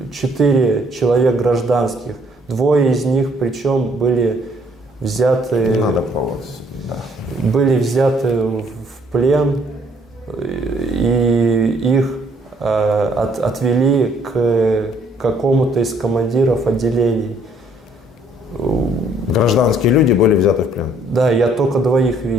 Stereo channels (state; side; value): normal; both; correlation 0.64